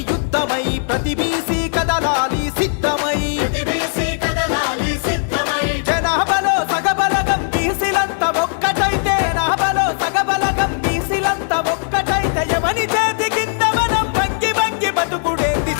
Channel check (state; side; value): silent; right; digital silence